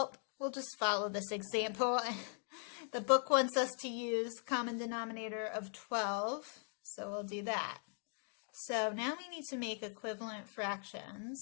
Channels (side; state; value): right; silent; 51 dB below the other